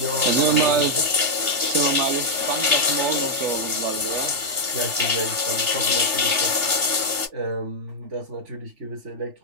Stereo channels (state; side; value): late; left; 3.4 ms